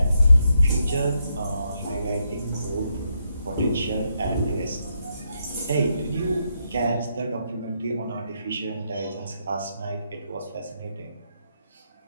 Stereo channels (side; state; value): both; inverted; correlation -0.79